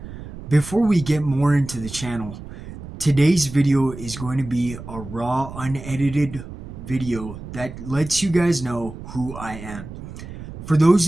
Before we get more into the channel, today's video is going to be a raw, unedited video that lets you guys know who I am. For those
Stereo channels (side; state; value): right; noise; rumble, 12 dB below the sound